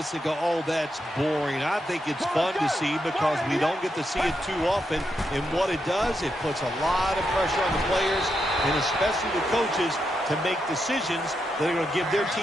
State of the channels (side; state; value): both; normal; correlation 0.83